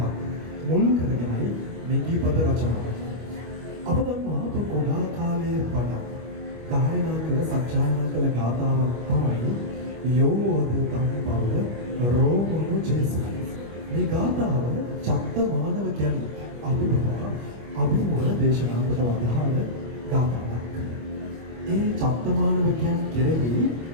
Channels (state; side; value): late; left; 25 ms